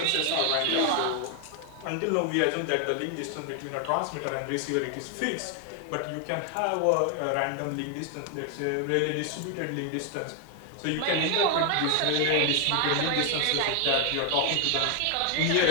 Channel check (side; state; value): both; different; correlation 0.01